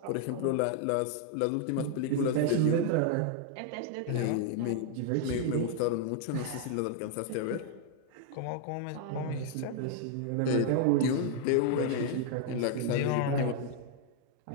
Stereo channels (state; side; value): different; both; correlation 0.00